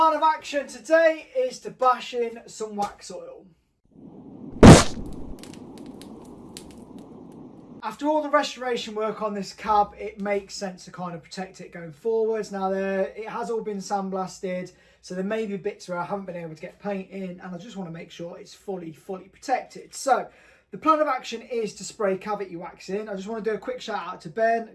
of action today is to bash in some wax oil. After all the restoration work on this cab, it makes sense to kind of protect it going forwards. Now it has all been sandblasted, so there may be bits where I haven't been able to get paint in, and I just want to make sure it's fully protected. So the plan of action is to spray cavity wax in. I just want to do a quick shout out to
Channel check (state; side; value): identical; both; correlation 1.00